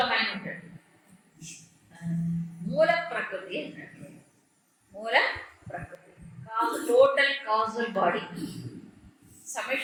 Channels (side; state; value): both; identical; correlation 1.00